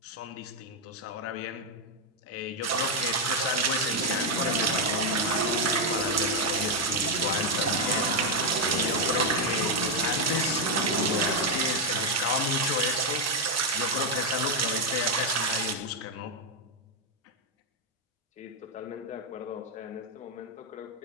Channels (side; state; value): both; normal; correlation 0.02